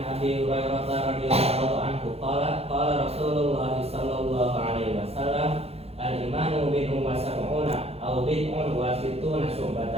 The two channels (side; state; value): left; late; 0.29 ms